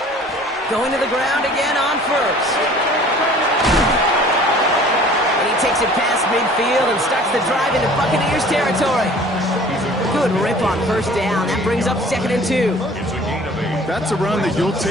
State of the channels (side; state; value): both; normal; correlation 0.49